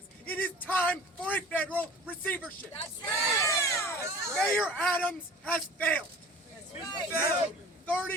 it is time for a federal receivership. That's right! Mayor Adams has failed. right. Failed.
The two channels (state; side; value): normal; both; correlation 0.42